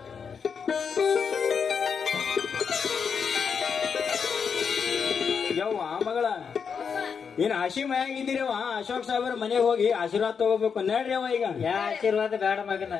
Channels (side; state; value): right; quieter; 6.4 dB